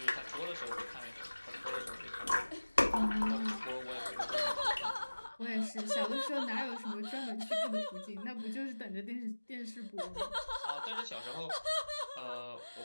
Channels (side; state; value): both; inverted; correlation -1.00